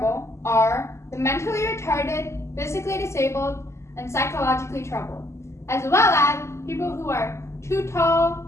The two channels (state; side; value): late; right; 0.13 ms